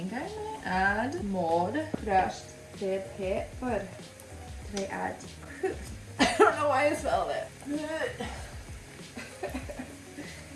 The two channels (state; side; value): identical; both; correlation 1.00